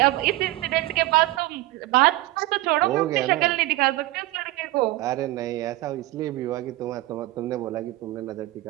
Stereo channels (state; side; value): quieter; left; 18.3 dB